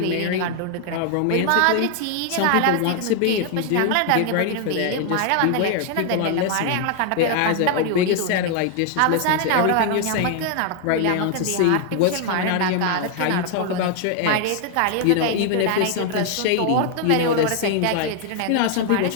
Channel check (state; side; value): different; both; correlation 0.00